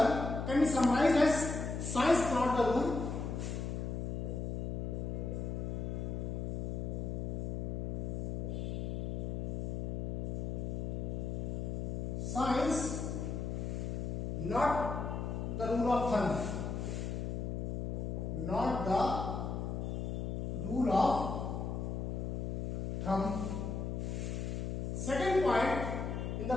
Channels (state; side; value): noise; left; hum, 2 dB below the sound